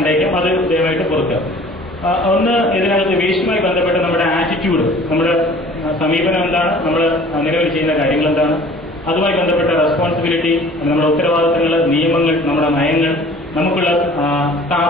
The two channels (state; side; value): normal; both; correlation 0.49